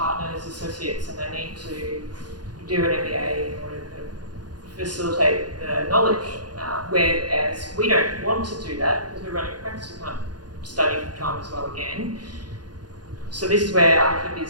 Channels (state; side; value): late; left; 0.70 ms